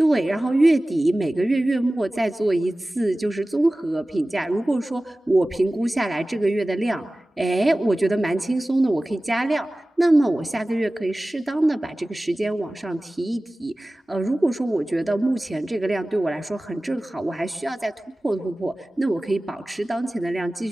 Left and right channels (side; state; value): both; normal; correlation 0.97